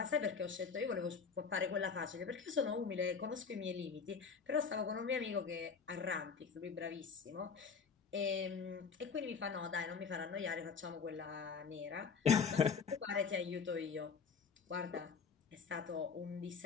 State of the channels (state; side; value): quieter; right; 5.7 dB